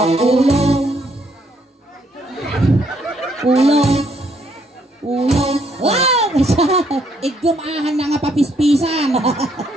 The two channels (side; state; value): both; normal; correlation 0.70